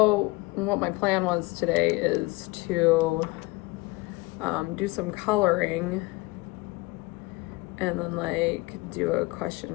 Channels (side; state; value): right; quieter; 23.4 dB